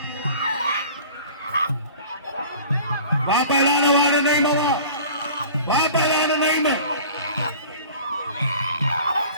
वाह पहलवान वाले नहीं मवा वाह पहलवान नहीं में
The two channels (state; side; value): inverted; both; correlation -0.43